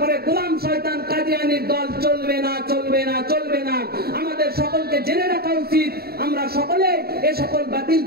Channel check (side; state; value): left; late; 0.45 ms